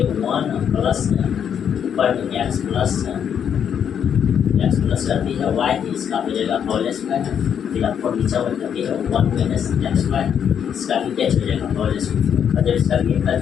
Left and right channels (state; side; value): quieter; right; 8.3 dB